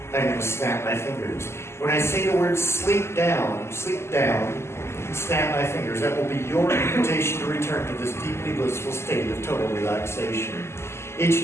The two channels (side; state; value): right; late; 0.12 ms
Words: I'm going to snap my fingers. When I say the word sleep down, snap my fingers. That will be your invitation to return to this deeply blissful state of total relaxation. Each